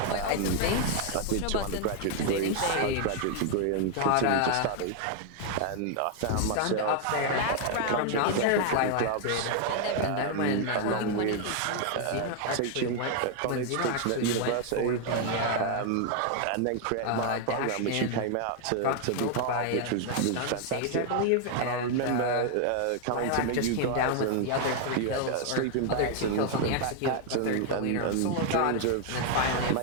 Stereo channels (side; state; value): both; different; correlation 0.00